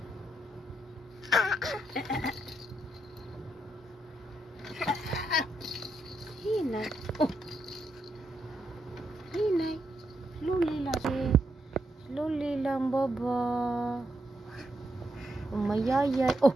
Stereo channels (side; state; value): both; normal; correlation 0.80